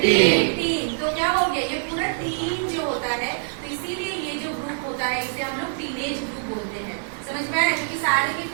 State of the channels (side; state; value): left; silent; digital silence